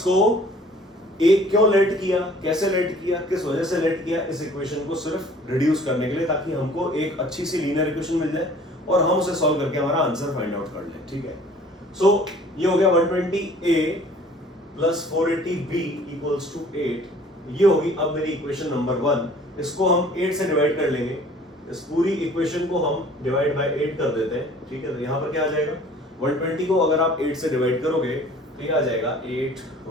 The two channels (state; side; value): normal; both; correlation 0.51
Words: एक क्यों लेट किया, कैसे लेट किया, किस वजह से लेट किया, इस इक्वेशन को सिर्फ रिड्यूस करने के लिए, ताकि हमको एक अच्छी सी लीनियर इक्वेशन मिल जाए और हम उसे सॉल्व करके हमारा आंसर फाइंड आउट कर लें। ठीक है, सो ये हो गया 120a plus 480b equals to 8। ये होगी अब मेरी इक्वेशन नंबर 1। इसको हम 8 से डिवाइड कर लेंगे, इस पूरी इक्वेशन को हम डिवाइड बाय 8 कर देते हैं। ठीक है, तो यहाँ पर क्या आ जाएगा, 120 को अगर आप 8 से डिवाइड करोगे तो ये आ जाएगा 8